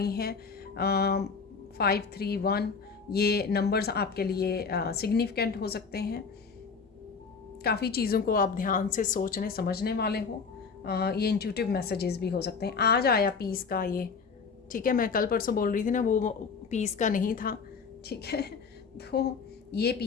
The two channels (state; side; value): quieter; right; 5.3 dB